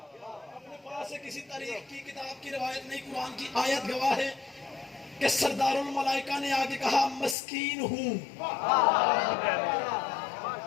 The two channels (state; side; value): drops out; right; at 7.4 s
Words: اپنے پاس سے کسی تاریخ کی کتاب کی روایت نہیں قرآن کی آیت گواہ ہے کہ سردار الملائکہ نے آگے کہا مسکین ہوں.